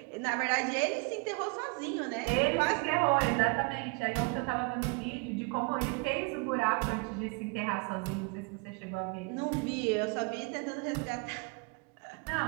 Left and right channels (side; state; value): left; quieter; 30.0 dB